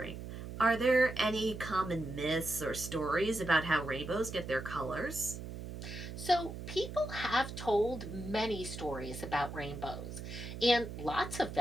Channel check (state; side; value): noise; right; hum, 9 dB below the sound